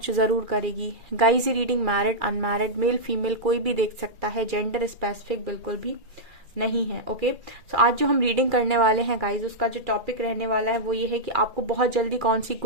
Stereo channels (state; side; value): late; left; 2.4 ms